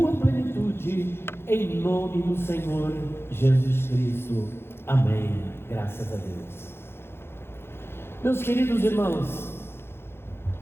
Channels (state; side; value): late; right; 0.11 ms